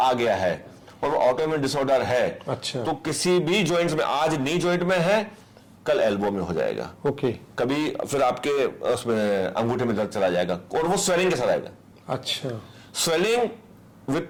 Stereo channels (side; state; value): both; identical; correlation 1.00